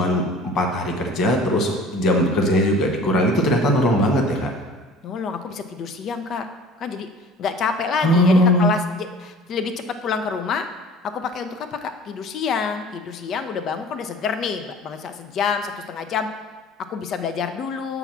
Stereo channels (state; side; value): normal; both; correlation 0.45